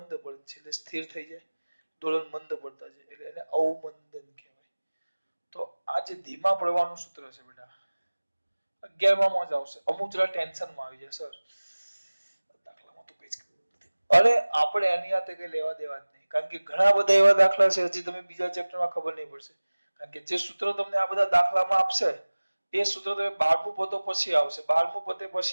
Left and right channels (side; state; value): both; inverted; correlation -1.00